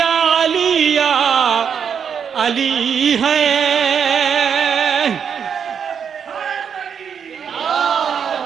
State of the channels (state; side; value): quieter; left; 7.3 dB